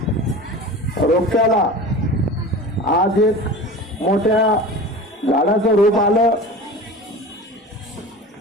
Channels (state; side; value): normal; both; correlation 0.35